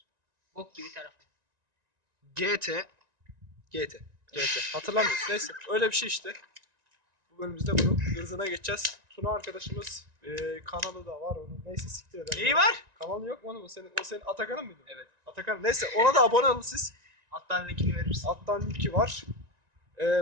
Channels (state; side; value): late; left; 1.9 ms